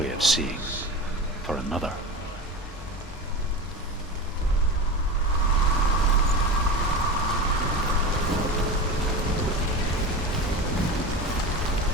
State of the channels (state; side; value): normal; both; correlation 0.27